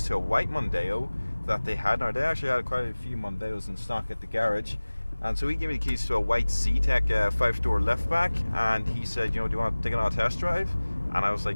to a white Mondeo that they had. Now, they actually had quite a few Mondeos in stock at the garage, and so he gave me the keys to a white C-Tech 5-door liftback, and he said, you know, do you want to take it on a test drive? And I was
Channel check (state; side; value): inverted; both; correlation -1.00